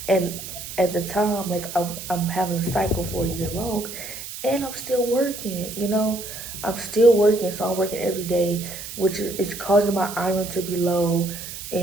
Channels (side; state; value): right; noise; hiss, 10 dB below the sound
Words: And at the time, like I'm having a cycle for a year long, and I'm still working. I'm still working, so I'm working every day, which is causing my iron to be low,